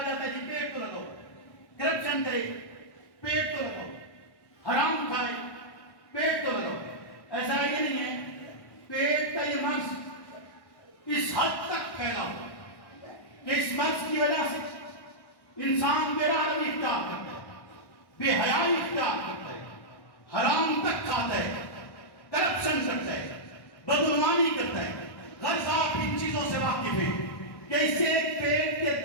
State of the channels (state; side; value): late; right; 1.1 ms